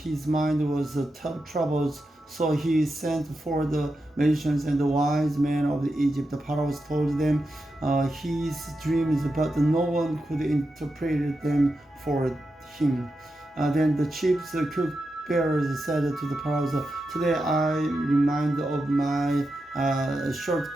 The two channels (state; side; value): normal; both; correlation 0.89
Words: mind was troubled. So he sent for the magicians and the wise men of Egypt. Pharaoh told them his dreams, but no one could interpret them for him. Then the chief cupbearers said to the Pharaoh, "Today I remind of my